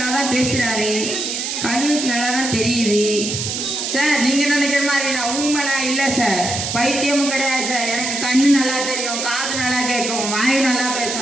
தான் பேசுறாரு, கண்ணுக்கு நல்லா தான் தெரியுது. சார் நீங்க நினைக்கிற மாதிரி நான் ஊமெல்லாம் இல்லை சார். பைத்தியமும் கிடையாது சார். எனக்கு கண்ணு நல்லா தெரியும், காது நல்லா கேட்கும், வாயு நல்லா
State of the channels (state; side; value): noise; right; hiss, 3 dB below the sound